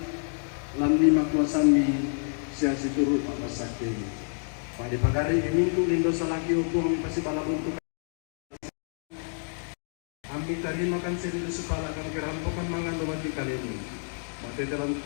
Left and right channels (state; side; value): silent; right; 59 dB below the other